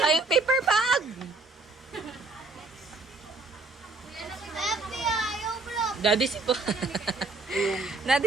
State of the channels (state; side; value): quieter; left; 3.4 dB